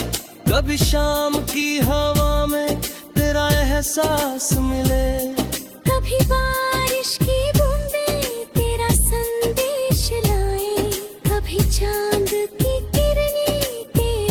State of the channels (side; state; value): both; identical; correlation 1.00